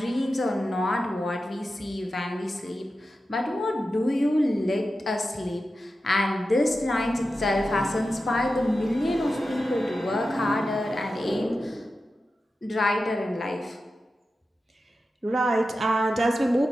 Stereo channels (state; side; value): normal; both; correlation 0.92